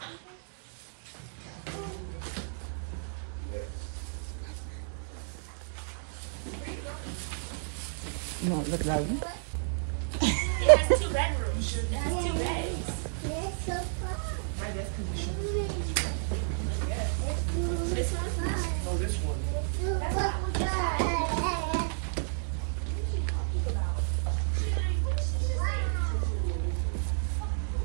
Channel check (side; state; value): left; silent; digital silence